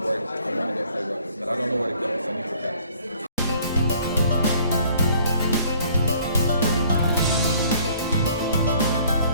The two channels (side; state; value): both; inverted; correlation -0.59